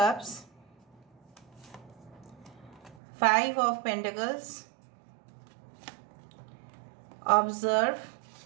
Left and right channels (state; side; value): drops out; left; at 3.0 s